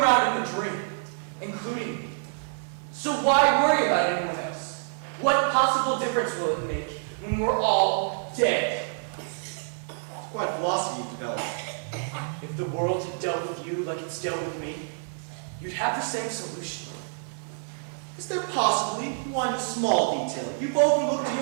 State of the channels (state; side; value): silent; left; 60 dB below the other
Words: around in a dream, including me. So why worry about anyone else? What possible difference will it make when we're all dead? It's quite philosophy you've developed. If the world had dealt with you like it's dealt with me, you'd have the same solution. Is there possibly one small detail you've overlooked in